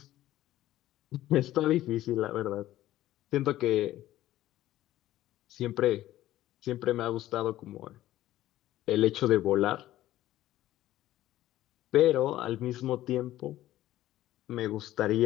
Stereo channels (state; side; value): quieter; right; 14.4 dB